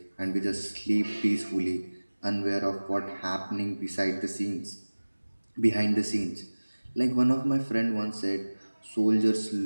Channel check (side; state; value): both; inverted; correlation -1.00